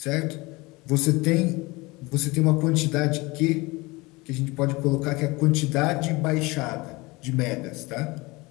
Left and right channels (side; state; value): right; quieter; 23.6 dB